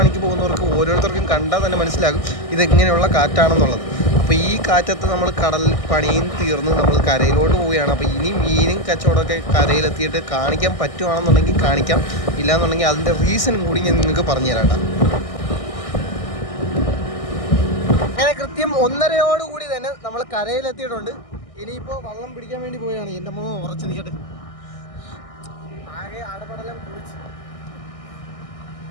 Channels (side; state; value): right; late; 1.6 ms